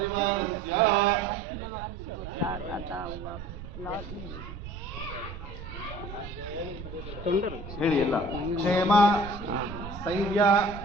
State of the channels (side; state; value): right; noise; rumble, 11 dB below the sound